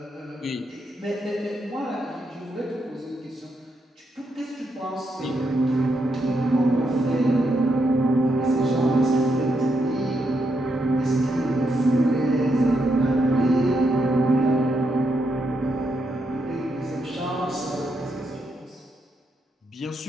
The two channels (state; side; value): normal; both; correlation 0.80